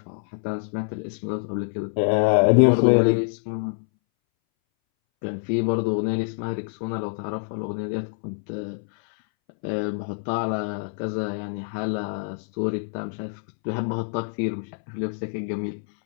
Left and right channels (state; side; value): silent; right; 61 dB below the other